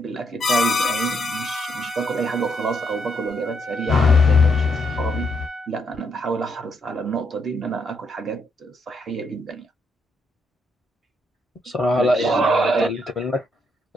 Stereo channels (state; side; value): normal; both; correlation 0.76